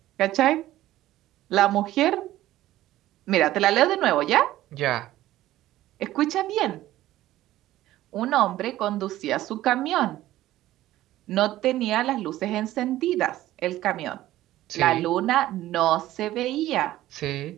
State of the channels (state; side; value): quieter; left; 14.9 dB